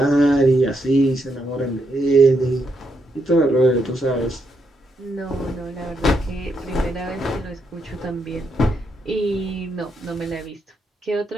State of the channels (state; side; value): normal; both; correlation 0.79